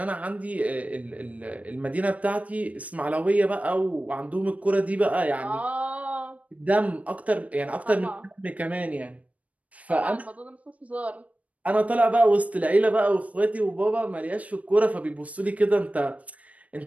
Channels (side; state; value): left; late; 0.068 ms